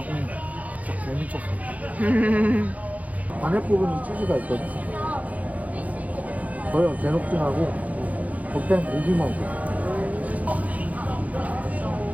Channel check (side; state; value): left; late; 0.072 ms